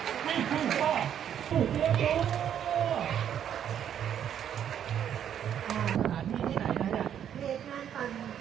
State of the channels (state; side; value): quieter; left; 9.5 dB